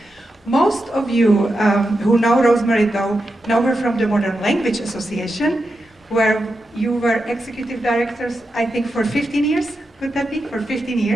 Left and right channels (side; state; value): both; normal; correlation 0.88